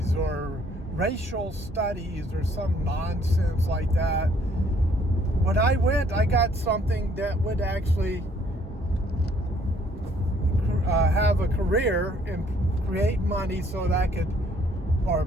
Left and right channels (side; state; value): both; normal; correlation 0.63